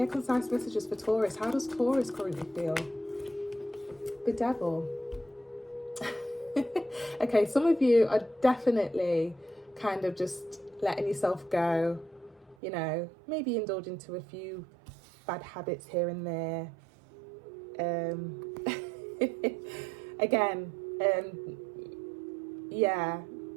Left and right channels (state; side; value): drops out; left; at 12.6 s